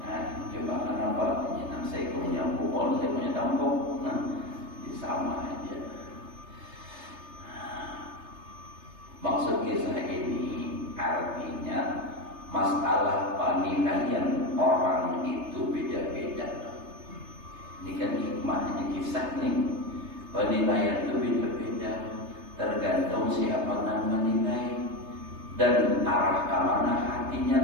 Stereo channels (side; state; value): left; late; 3.3 ms